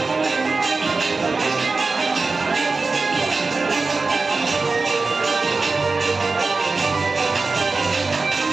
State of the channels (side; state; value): left; quieter; 3.9 dB